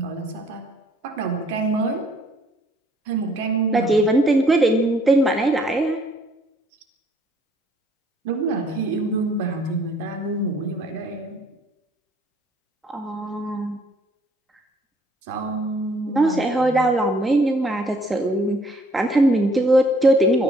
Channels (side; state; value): both; normal; correlation 0.63